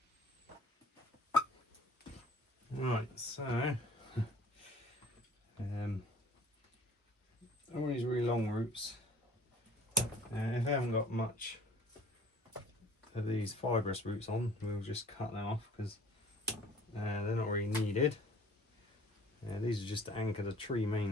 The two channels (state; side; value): normal; both; correlation 0.50